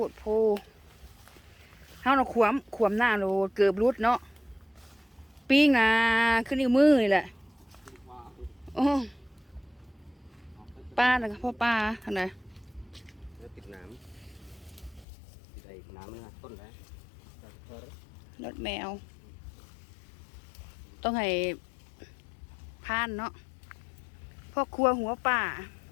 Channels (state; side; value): drops out; right; at 15.1 s